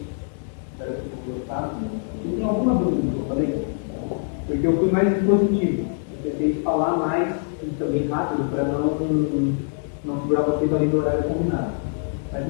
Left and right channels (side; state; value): right; silent; digital silence